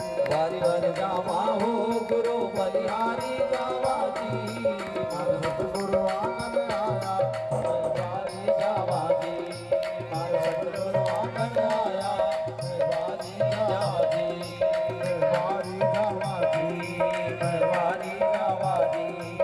बारी बारी जावा हो गुरु बलिहारी जावा जी हर सतगुरु आंगन आया बारी जावा जी मारा सतगुरु आंगन आया बारी जावा जी बारी जावा जी बारी जावा जी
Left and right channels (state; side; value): identical; both; correlation 1.00